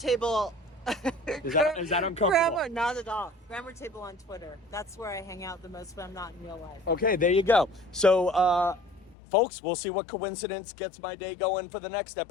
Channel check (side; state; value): right; drops out; at 9.2 s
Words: Is that uncomfortable? Grammar, not at all. Grammar table on Twitter. That's where I hang out the most when I'm not in real life. Okay, there you go. So, folks, we'll see what coincidence gets my day going for the next